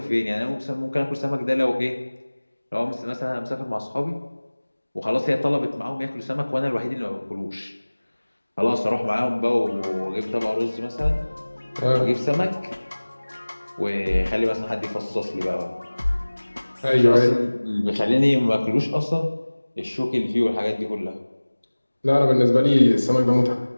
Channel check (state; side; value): inverted; both; correlation -1.00